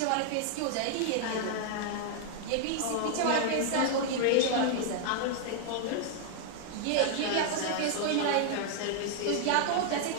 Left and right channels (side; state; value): both; different; correlation 0.00